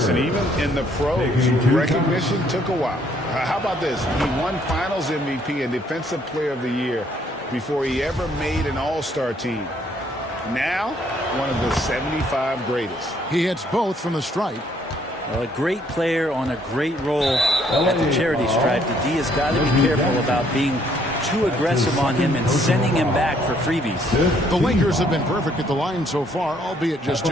even in the pros, recognition took a while. How about this? He won Finals MVP and Defensive Player of the Year before he ever made an All-Star team. Now, one of the 75 greatest. He hits both from the stripe. Well, a great player on a great role at the charity stripe. The D has got to be careful about being too aggressive on him and sending him back for freebies. The Lakers have been perfect at the line so far, albeit just 2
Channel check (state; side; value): normal; both; correlation 0.67